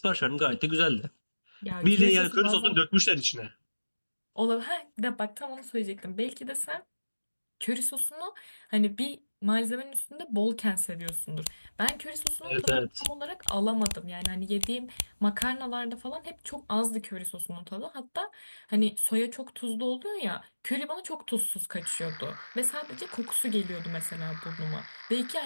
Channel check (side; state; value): both; inverted; correlation -1.00